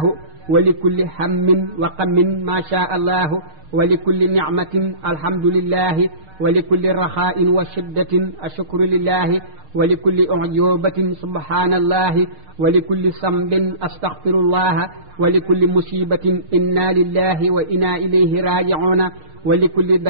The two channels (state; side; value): late; left; 6.5 ms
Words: wa li kulli hammin wa qammin ma sha allahu wa li kulli nicmatin alhamdulillahi wa li kulli raxaa'in wa shiddatin ashukru lillahi wa li kulli ujubatin subhanallahi wa li kulli sambin astaghfirullaha wa li kulli musibatin inna lillahi wa inna ilayhi raji'una wa li kulli